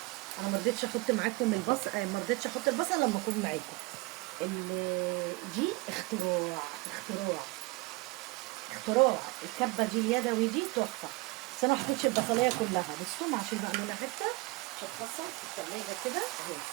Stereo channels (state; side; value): quieter; left; 24.8 dB